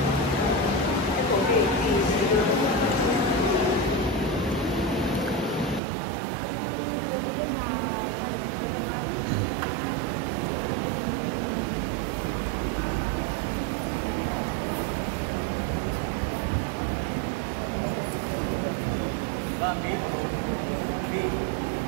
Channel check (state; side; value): drops out; left; at 5.8 s